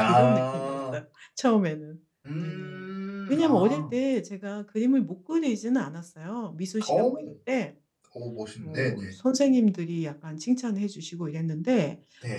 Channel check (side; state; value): both; identical; correlation 1.00